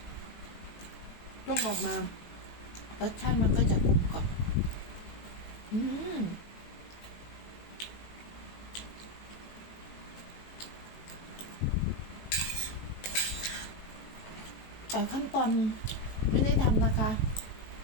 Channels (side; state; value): right; late; 18 ms